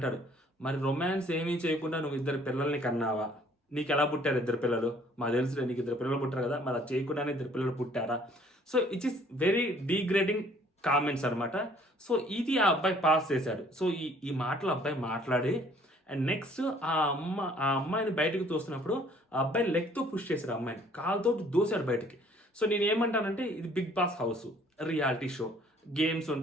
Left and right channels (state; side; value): normal; both; correlation 0.58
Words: మరి రొమాన్స్ ఏమీ చేయకుండా నువ్వు 2 పిల్లల్ని కన్నావా, నీకు ఎలా పుట్టారు 2 పిల్లలు, మాకు తెలుసులే నీకు 2 పిల్లలు పుట్టారు కదా, మరి అది చేయకుండానే 2 పిల్లలు పుట్టారా. So it is very degrading comments అనమాట. సో ఇది ఆ అబ్బాయి పాస్ చేశాడు. సో ఈ మాటలు అబ్బాయి మాట్లాడి అండ్ నెక్స్ట్ ఆ అమ్మాయిని బయటకు తోస్తున్నప్పుడు ఆ అబ్బాయి లెగ్తో పుష్ చేశాడు, అమ్మాయిని కాలుతో దోశాడు బయటికి. సో నేను ఏమంటానంటే, ఇది Big Boss house, reality show, games